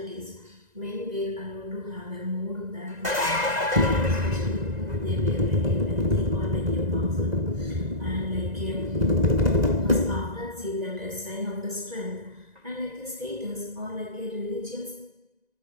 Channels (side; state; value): left; late; 2.0 ms